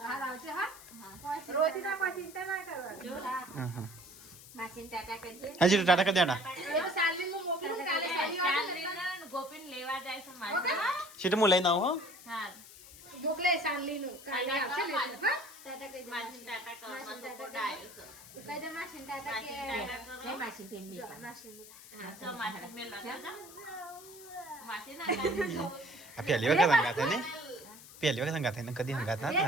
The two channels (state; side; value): noise; left; hiss, 18 dB below the sound